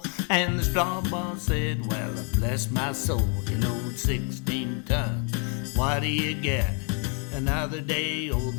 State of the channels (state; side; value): quieter; right; 38.2 dB